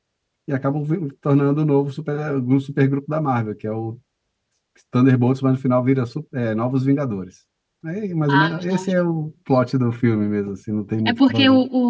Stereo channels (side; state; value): both; identical; correlation 1.00